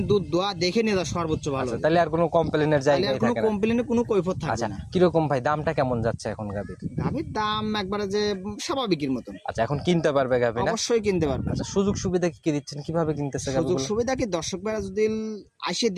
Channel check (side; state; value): both; identical; correlation 1.00